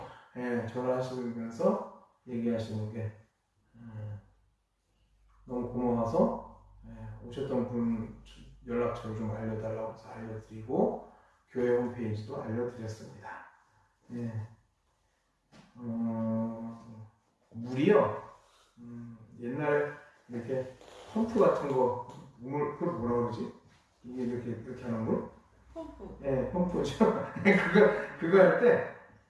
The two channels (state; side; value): identical; both; correlation 1.00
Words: 전화하시면서 얘기하시는 게 너무 고마워서 오셨던 분 연락처를 좀 알려달라고 해서 알려드리고 교회 홈페이지도 알려드렸습니다. 물이요. 옛날에 이렇게 펌프 같은 거 그걸 뭐라 그러지? 이게 이렇게 하는 물? 펌프. 펌프죠. 그거 할 때